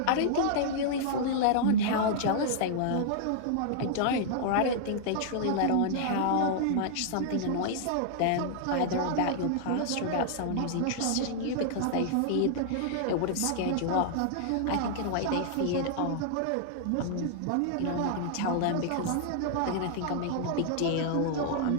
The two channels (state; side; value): different; both; correlation -0.01